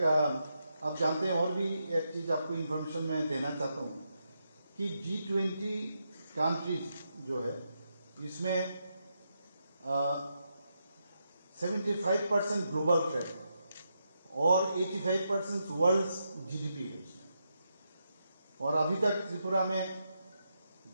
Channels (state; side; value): inverted; both; correlation -0.83